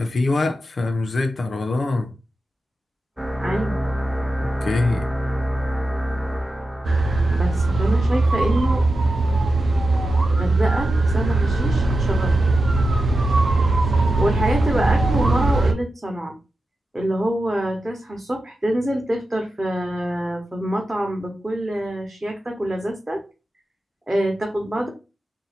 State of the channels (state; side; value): normal; both; correlation 0.91